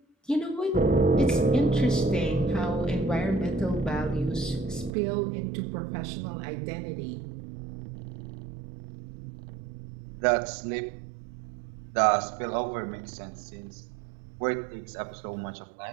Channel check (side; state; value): left; drops out; at 5.0 s